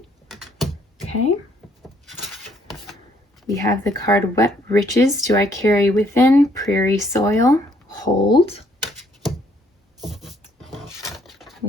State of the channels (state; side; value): normal; both; correlation 0.67